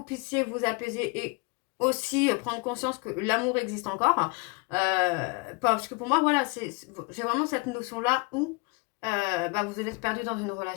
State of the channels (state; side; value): quieter; right; 29.2 dB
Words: puissiez vous apaiser et aussi prendre conscience que l'amour existe encore. Parce que pour moi, voilà, j'ai vraiment cette notion-là où vous êtes perdu dans une